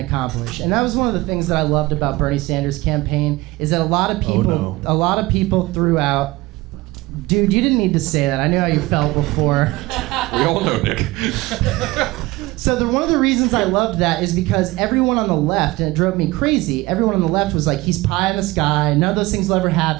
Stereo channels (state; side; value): quieter; left; 20.4 dB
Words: and that was one of the things that I loved about Bernie Sanders' campaign. Is that a lot of people threw out. Dude, you didn't need to say that. I knew how you felt before. We all know, Nick. So one of the reasons I loved that is because everyone on the left, and it drove me crazy. Everyone on the left was like, "He's pie in the sky. None of those things will ever